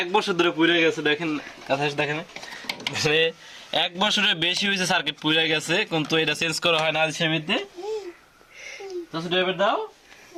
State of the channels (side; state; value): both; identical; correlation 1.00